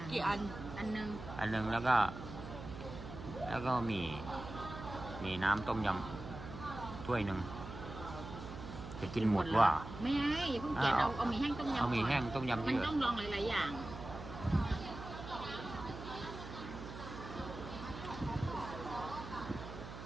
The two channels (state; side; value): noise; right; hum, 11 dB below the sound